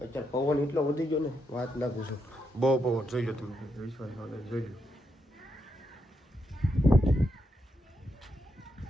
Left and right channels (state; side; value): normal; both; correlation 0.81